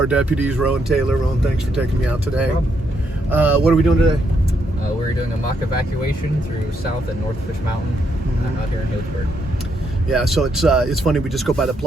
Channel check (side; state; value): both; normal; correlation 0.77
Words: deputies, Rowan Taylor. Rowan, thanks for taking me out today. What are we doing today? We're doing a mock evacuation through South and North Fitch Mountain out here in Healdsburg. Yeah, so it's funny. We just go by the